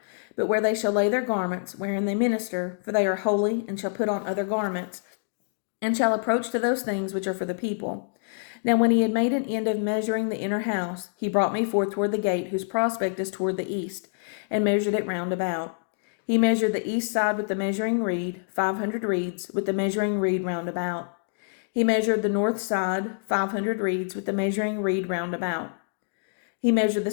but where they shall lay their garments, wherein they minister, for they are holy, and shall put on other garments, and shall approach to those things which are for the people. Now when he had made an end of measuring the inner house, he brought me forth toward the gate, whose prospect is toward the east, and measured it round about. He measured the east side with the measuring reed, 500 reeds, with the measuring reed round about. He measured the north side, 500 reeds, with the measuring reed round about. He measured the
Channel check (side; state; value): right; silent; digital silence